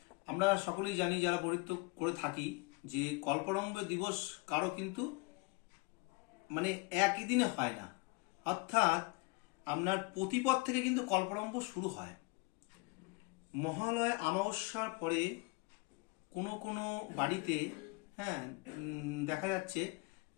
আমরা সকলেই জানি যারা পৌরোহিত্য করে থাকি যে কল্পারম্ভ দিবস কারো কিন্তু মানে একই দিনে হয় না। অর্থাৎ আপনার প্রতিপদ থেকে কিন্তু কল্পারম্ভ শুরু হয়। মহালয় অমাবস্যার পরে কোনো কোনো বাড়িতে দেখা যাচ্ছে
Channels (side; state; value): right; quieter; 26.7 dB